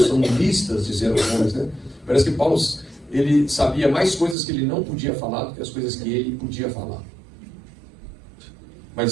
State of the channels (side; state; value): left; drops out; at 4.4 s